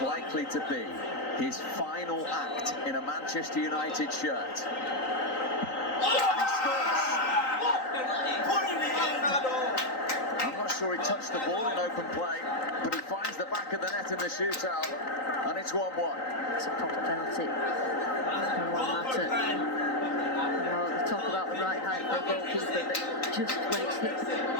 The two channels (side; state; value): right; late; 3.9 ms